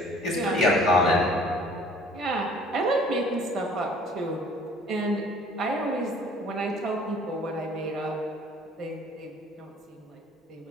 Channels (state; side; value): normal; both; correlation 0.53